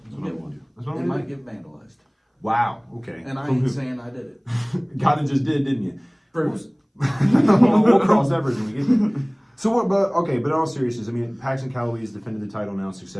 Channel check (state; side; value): identical; both; correlation 1.00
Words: That's what I'm gonna do. That's what It I'm gonna might do. get vandalized. Wow. Okay. And I From ain't who? saying I did it. Kinda just did, didn't you? Proves. We'll cross that bridge when we get there. So what? But in all seriousness, I mean, Paxton Calloway has defended the title now